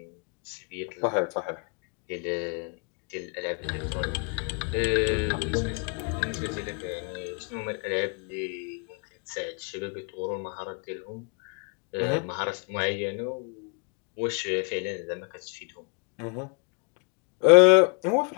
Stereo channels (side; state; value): right; quieter; 34.9 dB